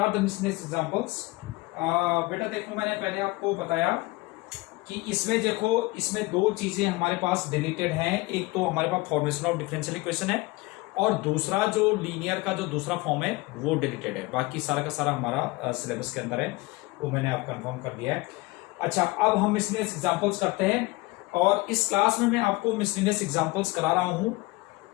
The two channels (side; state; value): right; quieter; 22.5 dB